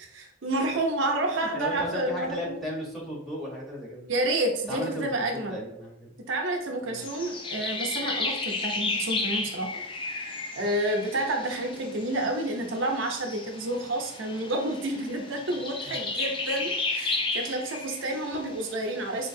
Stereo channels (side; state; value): both; normal; correlation 0.09